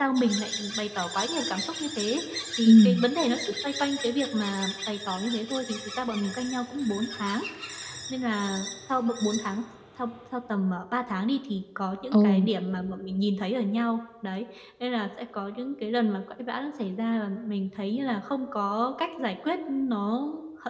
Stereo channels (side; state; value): both; identical; correlation 1.00